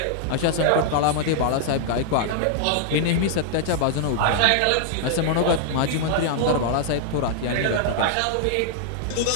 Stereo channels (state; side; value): different; both; correlation -0.01